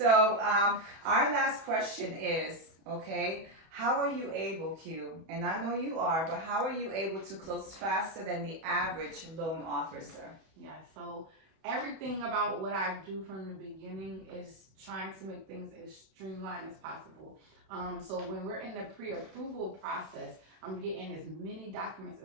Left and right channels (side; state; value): left; late; 31 ms